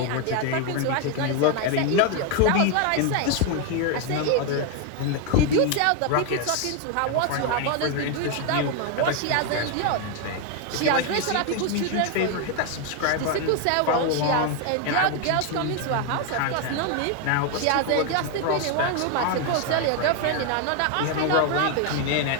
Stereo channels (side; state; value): both; different; correlation 0.01